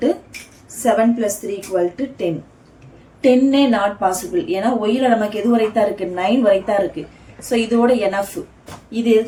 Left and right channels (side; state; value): both; identical; correlation 1.00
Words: 7 + 3 = 10. 10 not possible, ஏன்னா ஒய்ல நமக்கு எது வரைத்தான் இருக்கு, 9 வரைத்தான் இருக்கு. ஸோ இதோட எனஃப், இது எது